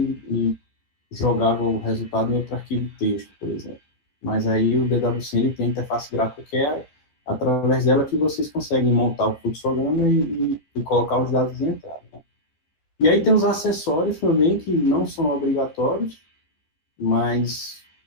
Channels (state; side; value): late; right; 13 ms